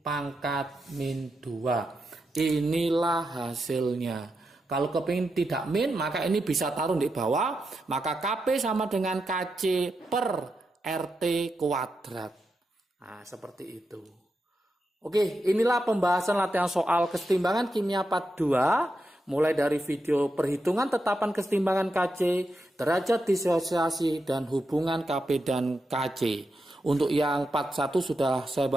pangkat min 2. Inilah hasilnya. Kalau kepingin tidak min, maka ini bisa taruh di bawah. Maka Kp sama dengan Kc per RT kuadrat. Nah, seperti itu. Oke, inilah pembahasan latihan soal kesetimbangan kimia part 2. Mulai dari video perhitungan tetapan kesetimbangan Kc, derajat disosiasi, dan hubungan Kp dan Kc. Untuk yang part 1 sudah saya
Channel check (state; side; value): normal; both; correlation 0.86